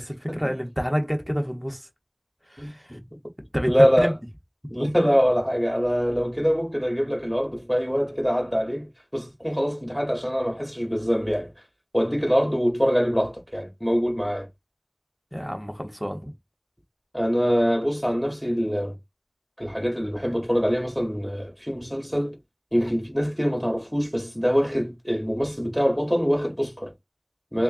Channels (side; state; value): both; identical; correlation 1.00